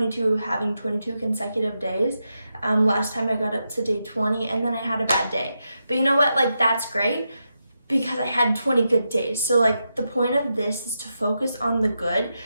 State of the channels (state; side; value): inverted; both; correlation -0.87